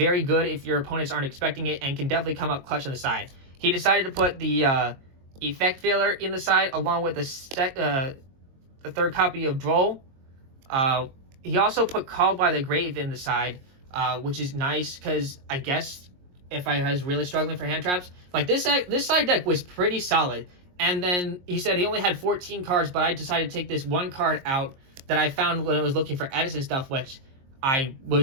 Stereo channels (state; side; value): late; left; 22 ms